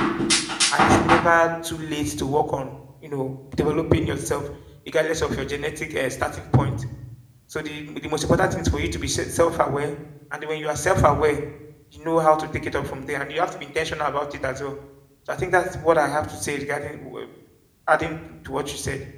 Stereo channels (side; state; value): both; identical; correlation 1.00